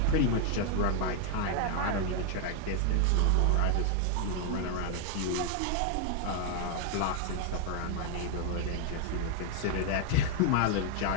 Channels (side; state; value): both; different; correlation 0.00